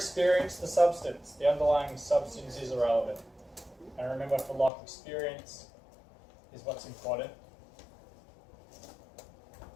the substance. The underlying substance is irrelevant. And remember, for Locke, experience is what's important.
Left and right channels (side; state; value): right; drops out; at 4.7 s